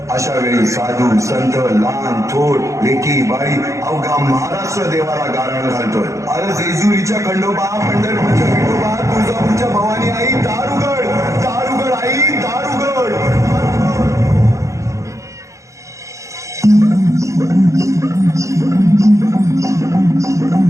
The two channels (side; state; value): left; late; 0.15 ms